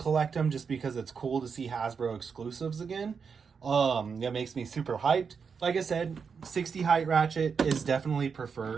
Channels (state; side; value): quieter; left; 5.9 dB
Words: them just because it's cool to see Hasbro exclusives again. That makes me super hyped. Like I said, 60 height ratchet is definitely